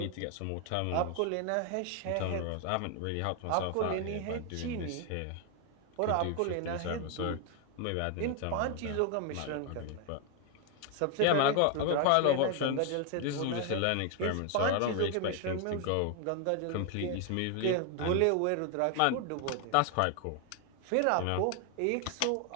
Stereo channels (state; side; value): different; both; correlation 0.00